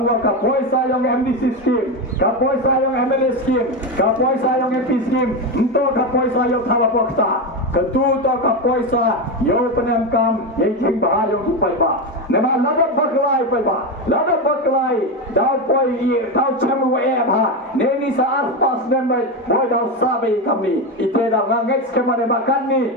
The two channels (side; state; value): both; normal; correlation 0.14